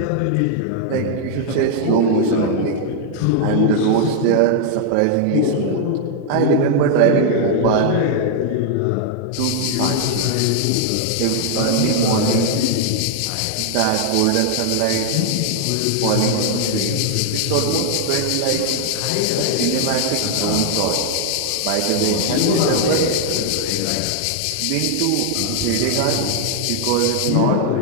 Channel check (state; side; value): different; both; correlation 0.00